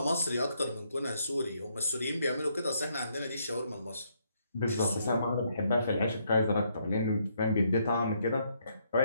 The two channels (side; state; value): both; inverted; correlation -0.73